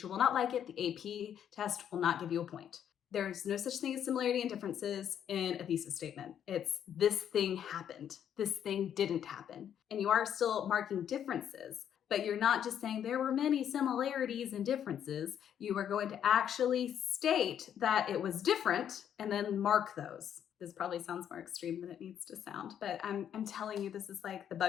will not like it. The AP test will not give you a point. There's no such thing as similarity and differences in a thesis statement. It's this thing happened. This thing didn't happen. And you are still marking differences, but you're not just saying there were many similarities and differences. You are going to actually state that it was different and then mark those. This probably sounds more extreme than it needs to sound, but I'm telling you, this is like the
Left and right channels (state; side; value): quieter; right; 9.4 dB